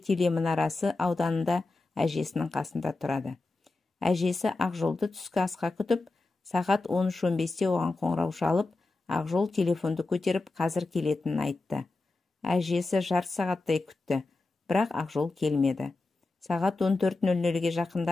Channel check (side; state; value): right; quieter; 3.3 dB